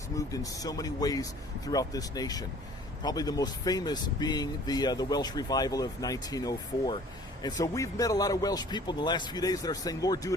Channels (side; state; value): both; normal; correlation 0.51